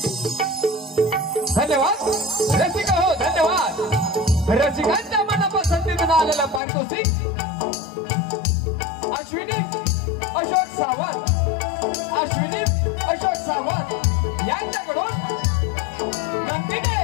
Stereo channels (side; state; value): right; drops out; at 6.6 s